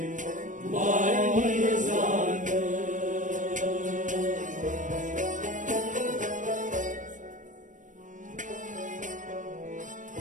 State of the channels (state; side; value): late; left; 0.37 ms